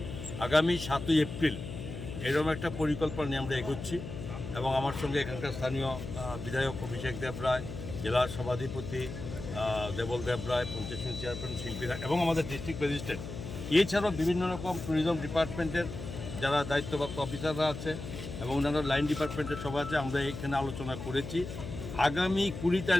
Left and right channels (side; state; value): left; noise; hum, 9 dB below the sound